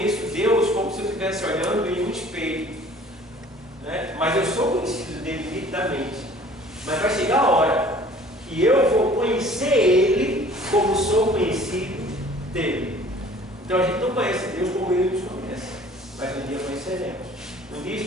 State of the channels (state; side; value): normal; both; correlation 0.51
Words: Deus como se eu estivesse olhando em um espelho, né? Mas eu sou conhecido dele nitidamente, mas vai chegar a hora que eu vou conhecer Ele como sou conhecido dele. Então a gente não conhece Deus como Ele nos conhece, mas um dia conheceremos. Um dia